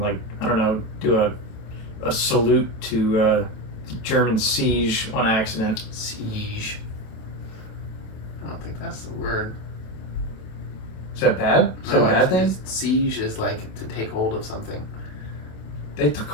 I don't know, do a salute to German siege on accident. Siege. I don't think that's the word. Is that bad? Is that a bad thing? Siege is like to take hold of something. They took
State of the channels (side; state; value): right; late; 27 ms